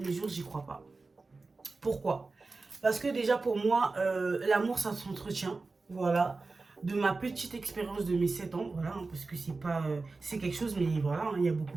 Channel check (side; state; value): left; quieter; 3.8 dB